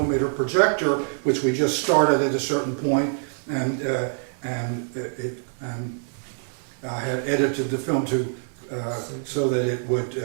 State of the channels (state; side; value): silent; left; 62 dB below the other